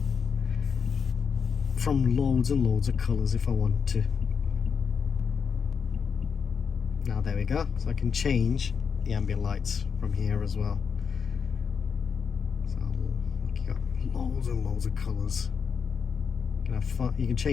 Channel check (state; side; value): quieter; right; 6.3 dB